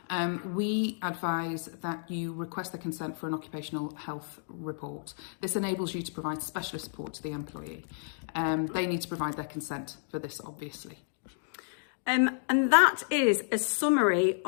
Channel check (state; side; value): silent; right; digital silence